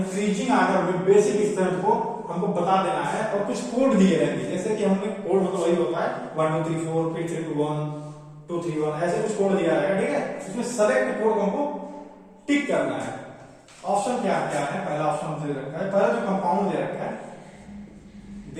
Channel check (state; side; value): identical; both; correlation 1.00